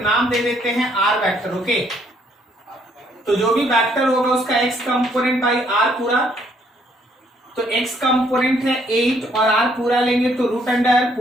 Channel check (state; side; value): normal; both; correlation 0.67